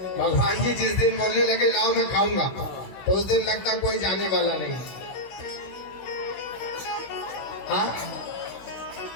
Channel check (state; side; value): late; right; 16 ms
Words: भगवान जी जिस दिन बोलने लगे लाओ मैं खाऊंगा, तो उस दिन लगता कोई जाने वाला नहीं। हाँ,